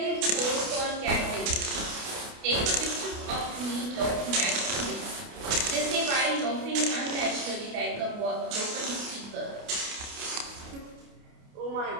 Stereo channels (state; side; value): late; left; 29 ms